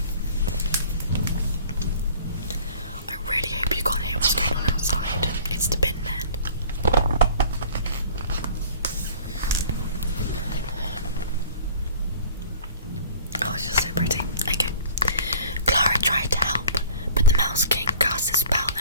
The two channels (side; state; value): both; inverted; correlation -0.48